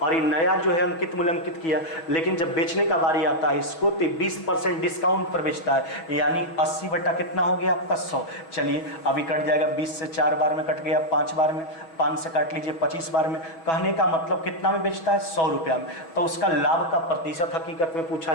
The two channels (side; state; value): right; late; 6.1 ms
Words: और ये नया जो है अंकित मूल्य अंकित किया। लेकिन जब बेचने का बारी आता है इसको तो 20% डिस्काउंट पर बेचता है, यानी 80 बटा कितना हो गया आपका 100। चलिए अभी कट जाएगा, 20 से 4 बार में कट गया, 5 बार में, 5 से काट लीजिए 25 बार में। कहने का मतलब कितना में बेचता है 100 रुपया में, तो उसका लाभ का प्रतिशत हकीकत में पूछा